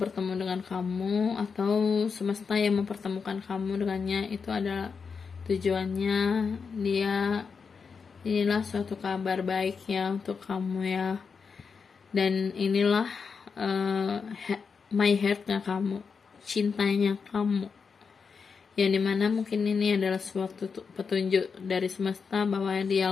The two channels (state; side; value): quieter; right; 5.6 dB